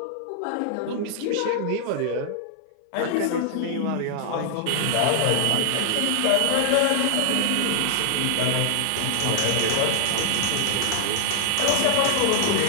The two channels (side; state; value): both; different; correlation 0.00